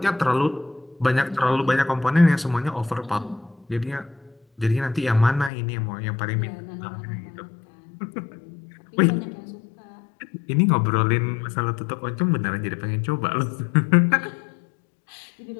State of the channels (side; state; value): right; drops out; at 5.5 s